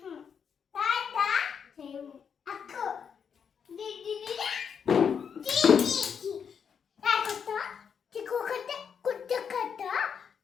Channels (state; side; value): quieter; right; 7.1 dB